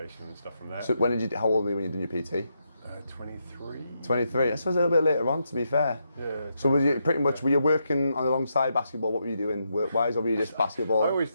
and stuff from there. So how old were you when you did your PT? 23. 23. I suppose a little bit later on, to be fair. Yeah. So were you working on alongside basketball? What were you doing work-wise, or were you just basketball? I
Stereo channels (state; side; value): inverted; both; correlation -0.82